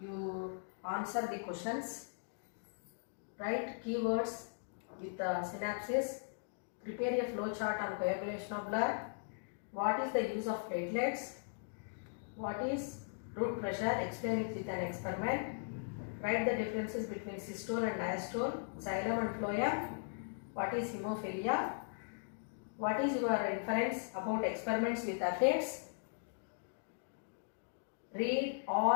you answer the questions, write keywords with synapses, prepare a flow chart on coagulation of blood, what is the use of platelets, what is root pressure, explain it with an experiment, write the differences between systole and diastole, xylem and phloem, what is hemophilia, what is your inference about experiments with aphids, read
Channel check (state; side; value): silent; right; digital silence